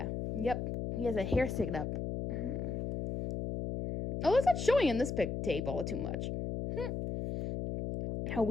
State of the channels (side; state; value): left; noise; hum, 3 dB below the sound